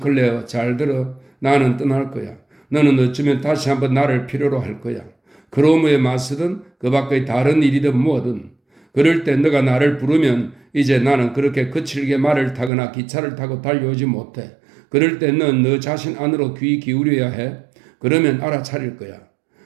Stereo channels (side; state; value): left; drops out; at 12.7 s